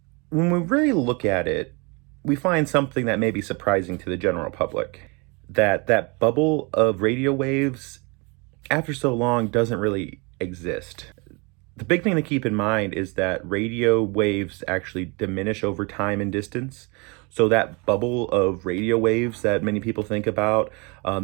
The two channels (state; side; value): quieter; left; 29.9 dB